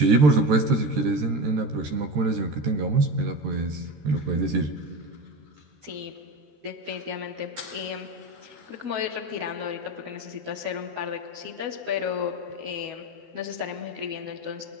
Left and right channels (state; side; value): late; left; 12 ms